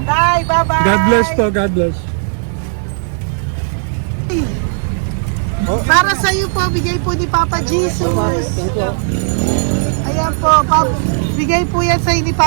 Tay, bye-bye. God bless po, God bless. Para sa'yo po, bigay po ni Papa Jesus. Ayan po, bigay po yan sa'yo ni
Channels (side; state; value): left; silent; digital silence